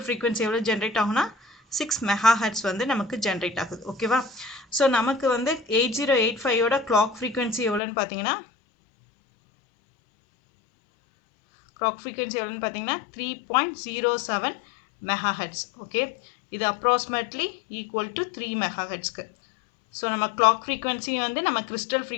ஃப்ரீக்வன்சி எவ்வளோ ஜென்ரேட் ஆகுனா 6 MHz வந்து நமக்கு ஜென்ரேட் ஆகுது. ஓகேவா? ஸோ நமக்கு வந்து 8085ஓட கிளாக் ஃப்ரீக்வன்சி எவ்வளோன்னு பார்த்தீங்கன்னா 3.07 MHz. ஓகே, இது அப்ராக்சிமேட்லி ஈக்குவல் டு 3 MHzக்கு. ஸோ நம்ம கிளாக் ஃப்ரீக்வன்சி வந்து நம்ம கிறிஸ்டல்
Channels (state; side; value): drops out; right; at 7.8 s